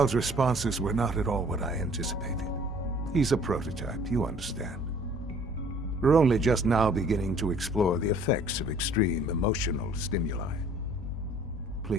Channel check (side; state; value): both; normal; correlation 0.54